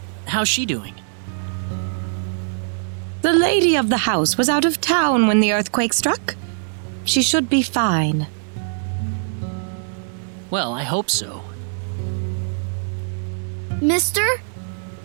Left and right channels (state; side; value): silent; left; 64 dB below the other